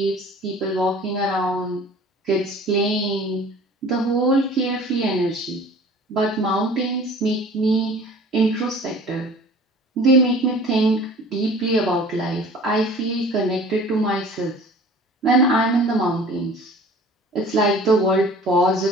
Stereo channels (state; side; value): normal; both; correlation 0.45